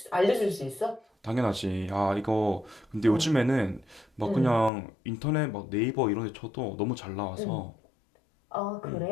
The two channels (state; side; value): drops out; right; at 4.7 s